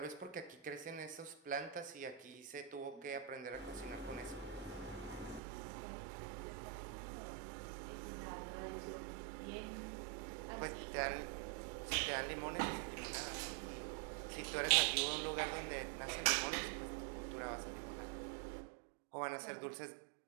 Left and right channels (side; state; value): left; drops out; at 5.4 s